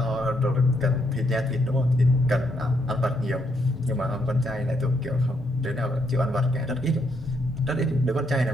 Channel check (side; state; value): both; normal; correlation 0.75